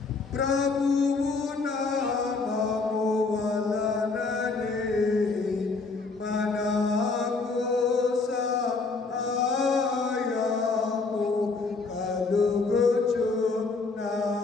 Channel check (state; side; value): quieter; right; 4.1 dB